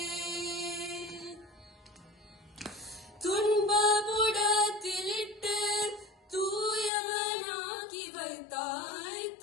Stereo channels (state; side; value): drops out; right; at 6.9 s